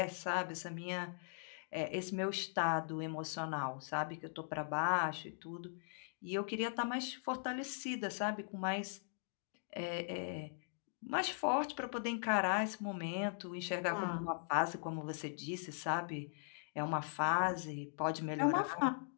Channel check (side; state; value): right; silent; digital silence